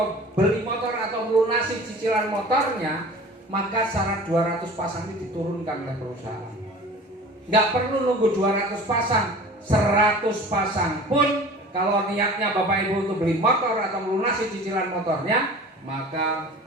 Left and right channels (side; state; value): both; normal; correlation 0.41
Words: beli motor atau melunasi cicilan motornya, maka syarat 200 pasang ini diturunkan oleh perusahaan. Nggak perlu nunggu 200 pasang, 100 pasang pun kalau niatnya Bapak Ibu untuk beli motor atau melunasi cicilan motornya, maka